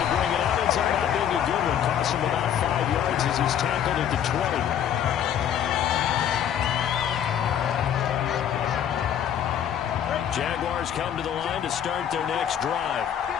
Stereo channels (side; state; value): right; quieter; 9.5 dB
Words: bring it out. It's not being a good one. Costs him about 5 yards as he's tackled at the 20. Jaguars come to the line to start their next drive.